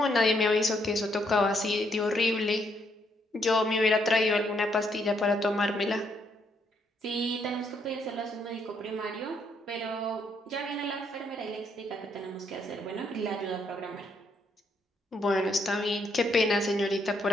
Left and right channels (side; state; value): both; normal; correlation 0.73